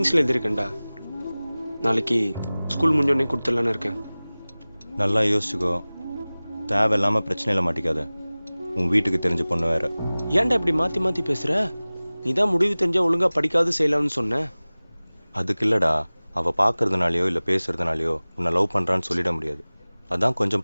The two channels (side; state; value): both; inverted; correlation -0.99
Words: எழுதியிருக்கேன்டா. நாளைக்கு ஸ்கூல் முடிஞ்சோடனே கொடுத்துடலான்னு இருக்கேன். நல்லா யோசிச்சுக்கோ, தேவையில்லாமல் பிரச்சனையில் மாட்டிக்காத. உன் வீட்டுக்கு தெரிஞ்ச பொண்ணு வேற. ஏன்டா இப்படி மாற்றி மாற்றி பேசுகிற? நீ தான் முடிவு தெரிஞ்சால் ஒழுங்காக படிக்காது செய்யலாம்னு சொன்ன. அதுக்கு இல்லைடா, அவள் பார்க்கறதுனாலையோ இல்லை பேசுறதுனாலையோ உன்னை லவ் பண்ணுறான்னு சொல்லிட முடியாது. அதான்